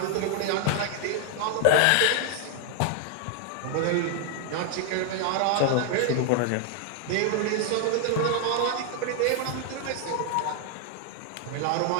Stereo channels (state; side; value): different; both; correlation 0.00